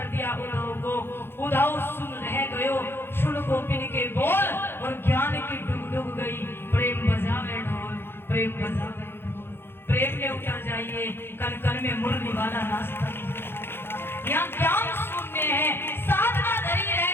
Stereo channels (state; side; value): late; right; 0.11 ms